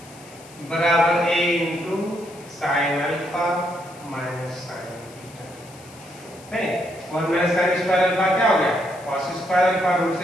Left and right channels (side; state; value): left; noise; hiss, 22 dB below the sound